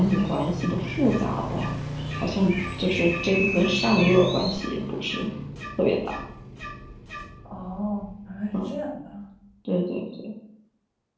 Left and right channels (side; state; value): both; identical; correlation 1.00